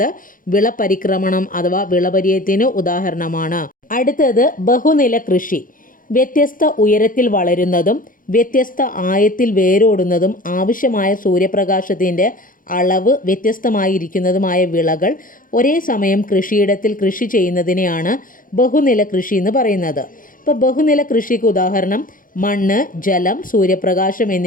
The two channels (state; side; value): late; right; 0.40 ms